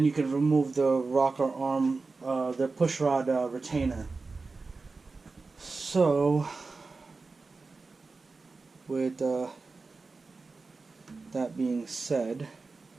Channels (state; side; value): quieter; left; 4.0 dB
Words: can remove the rocker arm, the pushrod retainer. So, with that being said,